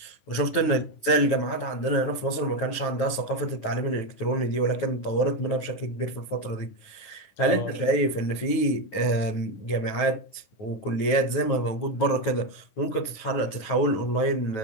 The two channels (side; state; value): right; late; 9.4 ms